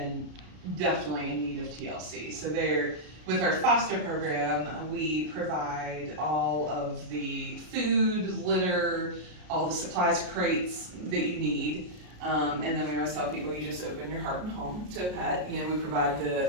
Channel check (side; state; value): left; late; 33 ms